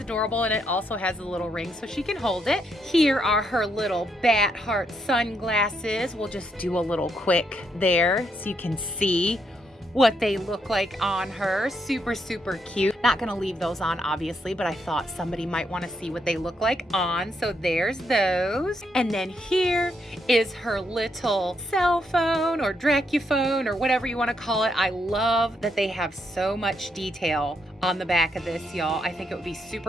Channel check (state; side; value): normal; both; correlation 0.77